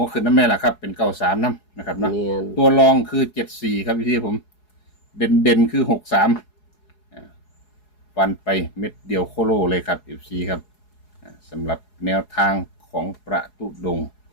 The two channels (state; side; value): late; right; 4.8 ms